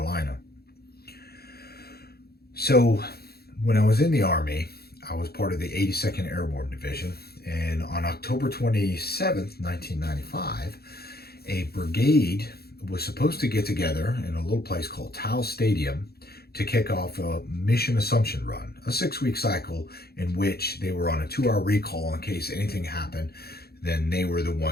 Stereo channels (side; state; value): right; late; 0.46 ms